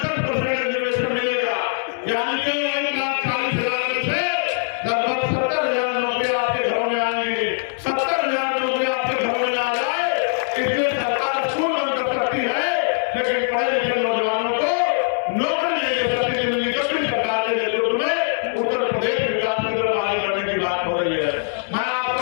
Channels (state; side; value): silent; right; digital silence